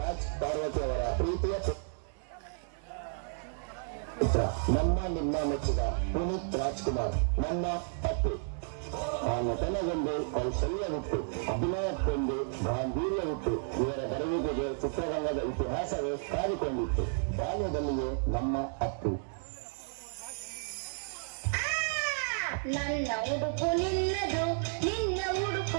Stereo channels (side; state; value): left; silent; digital silence